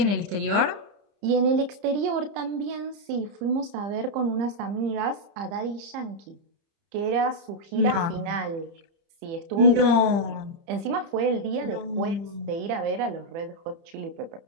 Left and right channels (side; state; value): left; late; 30 ms